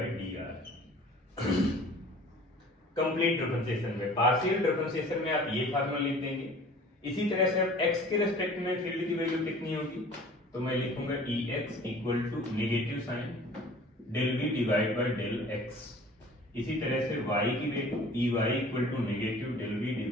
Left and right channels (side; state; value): both; normal; correlation 0.47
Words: D R. Complete differentiation में, partial differentiation में आप ये फार्मूला लिख देंगे। इसी तरह से अब x के रेस्पेक्ट में फील्ड की वैल्यू कितनी होगी, तो मैं लिखूंगा Ex equal to negative sign del v divide by del x। इसी तरह से y की वैल्यू Ey equal to negative del v